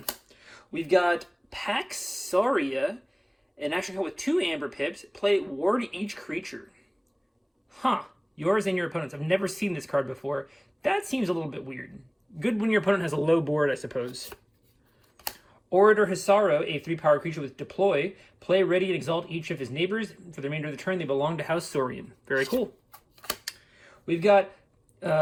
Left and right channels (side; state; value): both; identical; correlation 1.00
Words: We've got Paxaria, an action card with 2 Amber Pips. Play, ward each creature. Yours and your opponent's. I've never seen this card before. That seems a little bit weird. Good when your opponent has a low board, I suppose. Orator Hisaro, a 3-power creature with deploy. Play, ready, and exalt each of his neighbors. For the remainder of the turn, they belong to House Saurian. Very cool. We've got